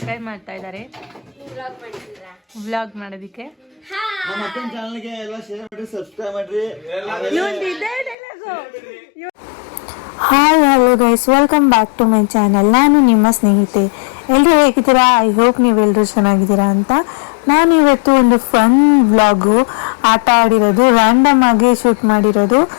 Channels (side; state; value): right; drops out; at 8.2 s